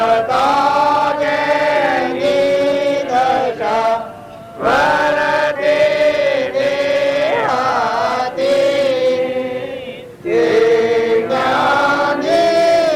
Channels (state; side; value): identical; both; correlation 1.00